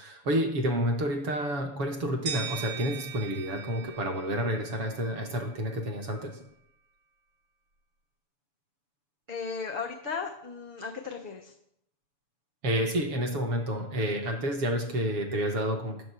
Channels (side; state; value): left; late; 7.0 ms